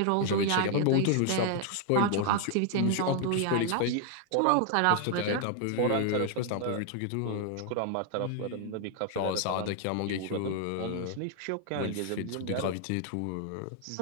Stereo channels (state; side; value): different; both; correlation 0.00